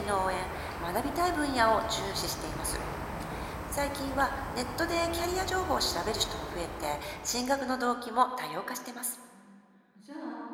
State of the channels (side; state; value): both; identical; correlation 1.00